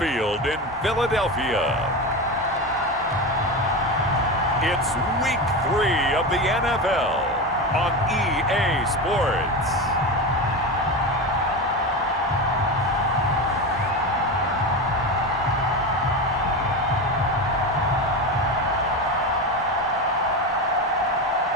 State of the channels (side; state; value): both; normal; correlation 0.21